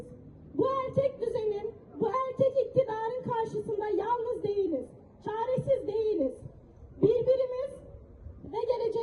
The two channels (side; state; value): both; identical; correlation 1.00